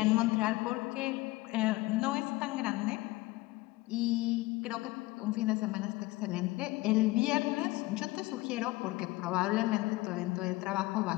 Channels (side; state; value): right; quieter; 20.2 dB